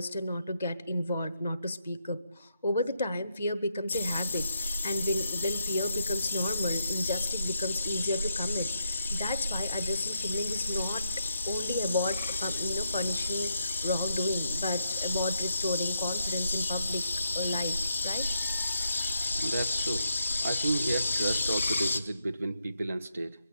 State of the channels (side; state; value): both; inverted; correlation -0.79